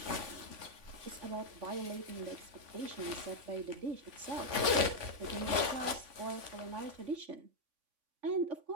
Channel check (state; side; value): late; left; 3.5 ms